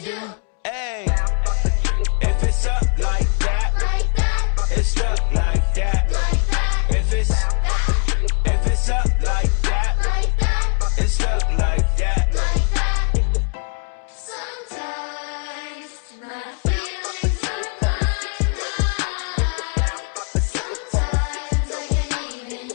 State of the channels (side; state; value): right; quieter; 38.5 dB